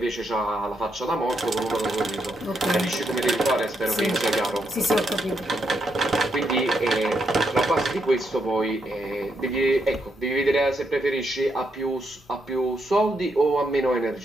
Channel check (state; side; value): normal; both; correlation 0.79